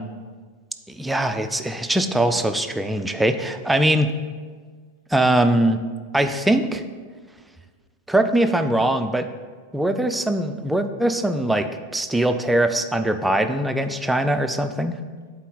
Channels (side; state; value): both; normal; correlation 0.78